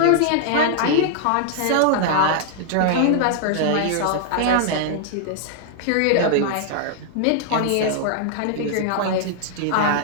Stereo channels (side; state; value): both; different; correlation -0.01